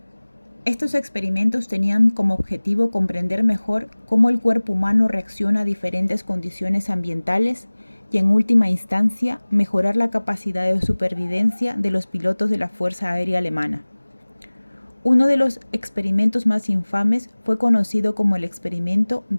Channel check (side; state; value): both; inverted; correlation -1.00